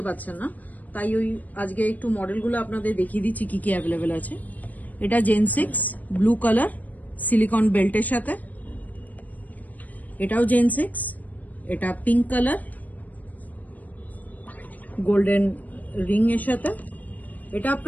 পারছেন না, তাই ওই আজকে একটু মডেলগুলো আপনাদের দেখিয়ে দিচ্ছি কি কি অ্যাভেলেবেল আছে। এটা জেন 6 ব্লু কালার সিলিকন বেল্টের সাথে। এটাও জেন 6, এটা পিঙ্ক কালার গোল্ডেন রিং এর সাথে। এটা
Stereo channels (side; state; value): right; late; 0.078 ms